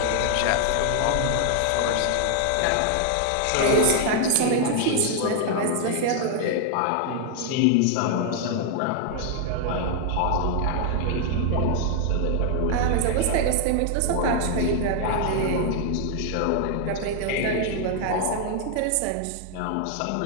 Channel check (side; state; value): both; different; correlation 0.00